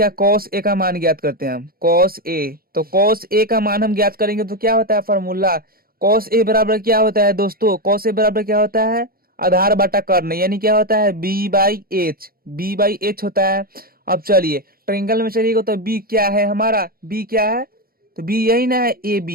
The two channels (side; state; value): left; late; 0.43 ms